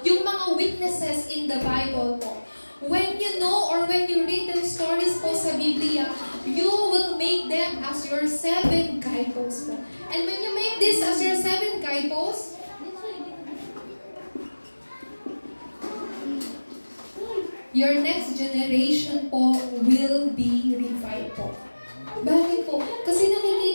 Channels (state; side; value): inverted; both; correlation -1.00